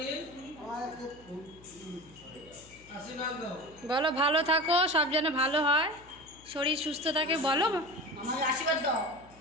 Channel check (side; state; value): left; noise; hum, 24 dB below the sound